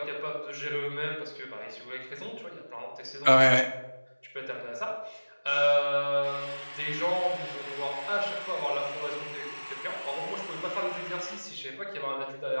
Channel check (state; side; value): inverted; both; correlation -1.00